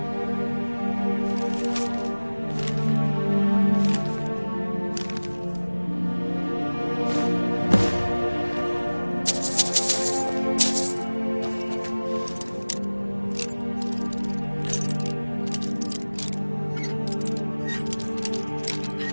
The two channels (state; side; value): inverted; both; correlation -1.00